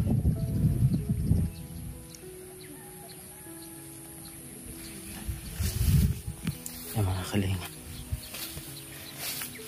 Yan mga kalinga.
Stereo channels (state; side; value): identical; both; correlation 1.00